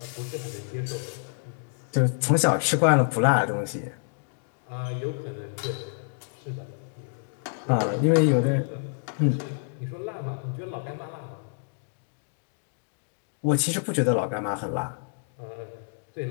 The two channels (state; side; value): silent; right; digital silence